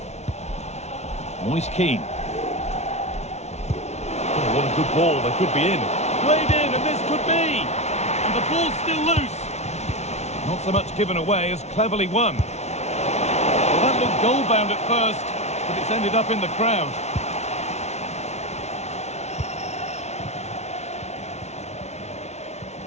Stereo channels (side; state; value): right; late; 0.32 ms